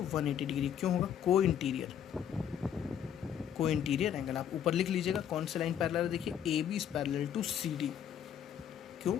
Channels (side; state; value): right; quieter; 9.2 dB